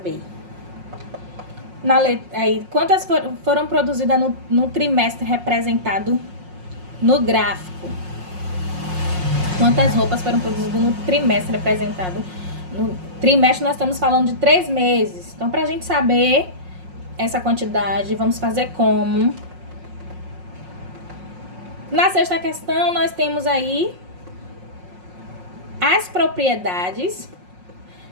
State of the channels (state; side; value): late; left; 5.5 ms